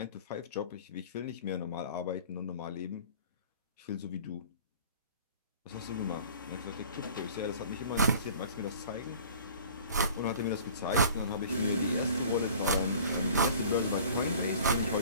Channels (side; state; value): both; inverted; correlation -0.47